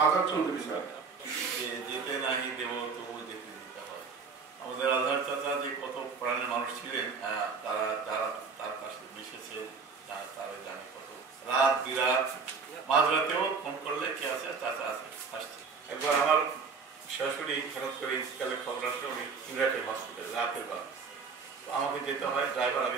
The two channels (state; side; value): quieter; left; 5.1 dB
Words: আজাদ চৌধুরী স্যার। যেতে নাহি দেব তবু যেতে দিতে হয়। আমাদের আজহার চাচা যে কত প্রাণের মানুষ ছিলেন, তারা যারা তার পাশে মিশেছে তারা জানে কত রাত বিরাত মাঝরাতেও ফোন করলে কে আছে, চাচা আছে, আসছে। একবার আমার শাশুড়ি হঠাৎ করে ইন্সকালের খবর আসলে উনি ইমরাটের হসপিটালে রাতের বার, তো আমাকে যেতে হয়, ড্রাইভার